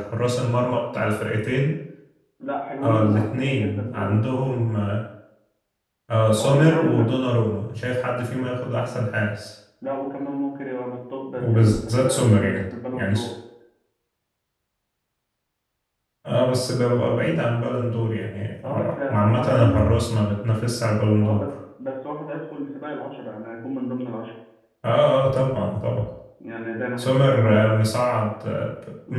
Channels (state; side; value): identical; both; correlation 1.00